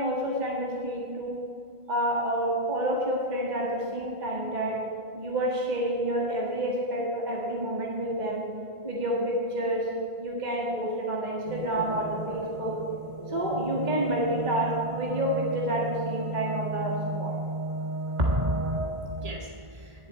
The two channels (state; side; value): late; left; 1.5 ms